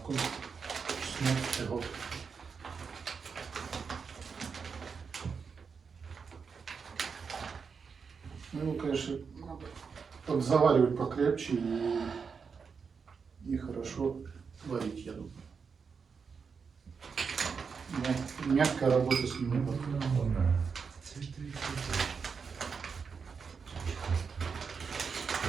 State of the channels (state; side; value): quieter; left; 5.7 dB